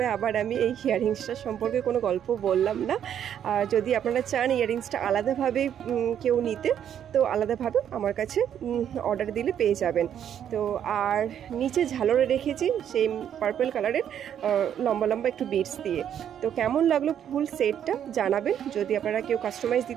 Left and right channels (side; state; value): left; quieter; 9.5 dB